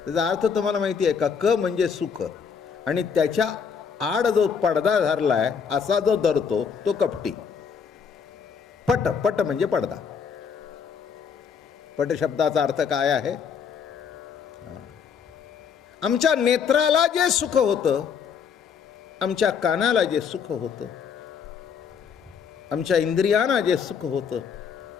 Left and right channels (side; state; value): right; quieter; 6.7 dB